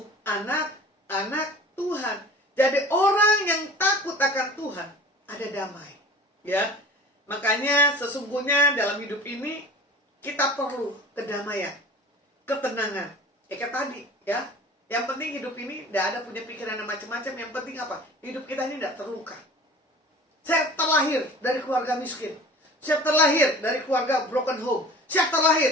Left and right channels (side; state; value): both; normal; correlation 0.41